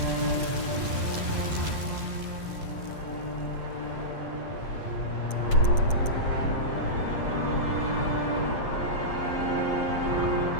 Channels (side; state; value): right; late; 7.8 ms